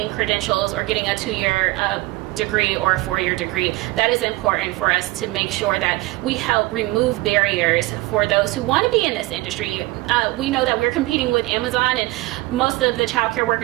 credentials or getting a 2-year degree or a 4-year degree. That is important for us to make sure that we help remove barriers for those who want to be in this industry. We know that we're competing with Amazon, and most of the child care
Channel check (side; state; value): left; quieter; 20.5 dB